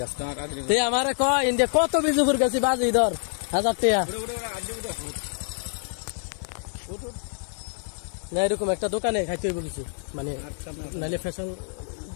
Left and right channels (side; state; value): right; silent; 61 dB below the other